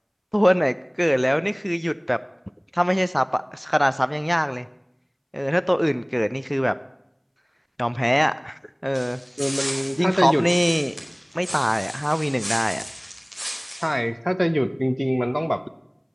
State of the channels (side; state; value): both; identical; correlation 1.00